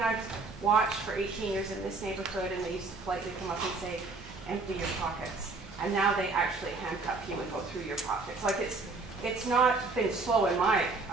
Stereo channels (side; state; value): left; quieter; 3.7 dB